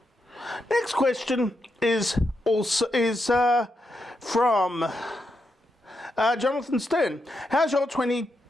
Next question is from Jonathan Stern. How's your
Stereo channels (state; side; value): normal; both; correlation 0.84